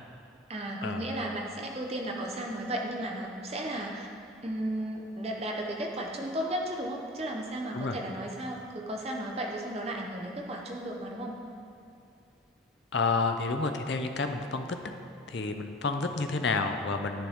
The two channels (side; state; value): both; normal; correlation 0.36